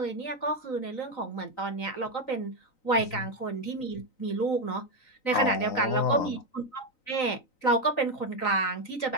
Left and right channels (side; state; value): right; late; 3.9 ms